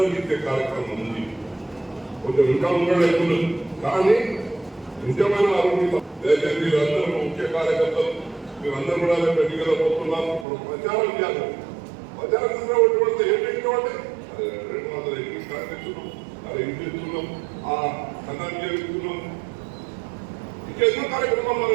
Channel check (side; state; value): left; drops out; at 10.5 s